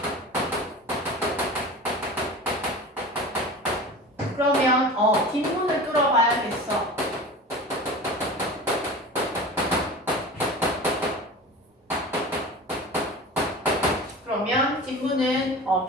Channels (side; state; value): both; normal; correlation 0.34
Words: 그러면 뒷문을 뚫어봐야겠어. 그러면 뒷문은